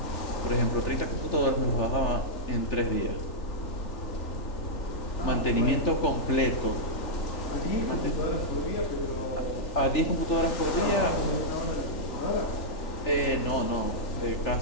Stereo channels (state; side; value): late; right; 3.4 ms